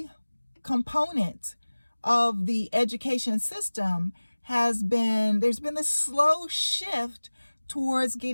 component of the education system there's been this slow shift towards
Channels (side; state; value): both; inverted; correlation -1.00